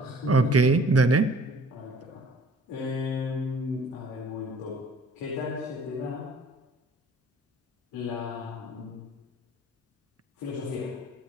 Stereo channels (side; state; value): both; normal; correlation 0.51